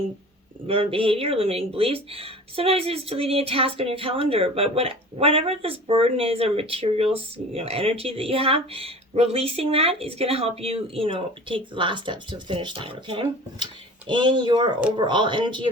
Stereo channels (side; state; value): both; normal; correlation 0.40